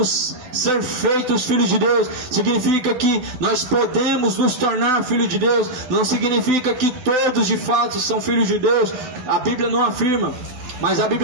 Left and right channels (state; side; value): late; left; 12 ms